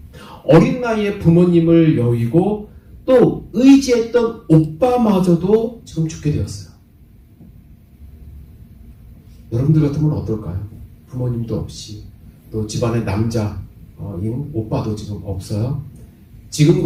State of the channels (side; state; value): both; identical; correlation 1.00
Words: 어린 나이에 부모님을 여의고 또 의지했던 오빠마저도 지금 죽게 되었어요. 여러분들 같으면 어떨까요? 부모님도 없이 또 집안에 남자인 오빠도 지금 없어요.